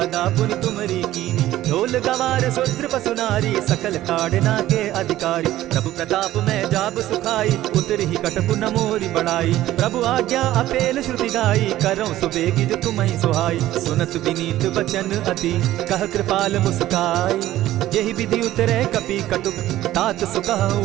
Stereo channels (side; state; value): left; quieter; 14.5 dB